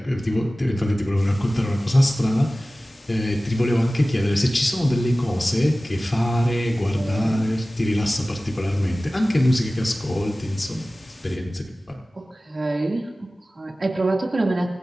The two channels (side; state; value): both; normal; correlation 0.97